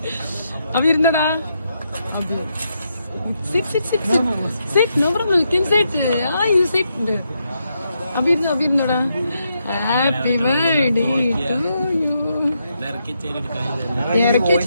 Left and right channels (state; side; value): inverted; both; correlation -0.81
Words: അപ്പൊ ഇരുന്നടാ. Sit, sit, sit, sit. Sit, no problem. You can sit. Yeah, you sit. Abirnada. Happy birthday to you.